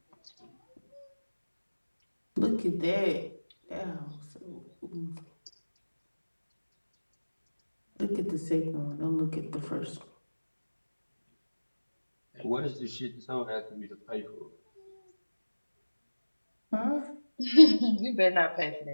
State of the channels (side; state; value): both; inverted; correlation -1.00